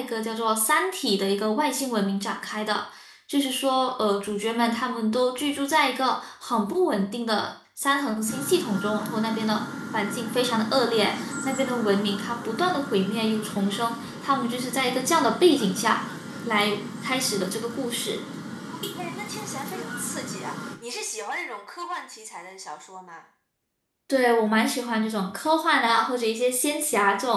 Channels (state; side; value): identical; both; correlation 1.00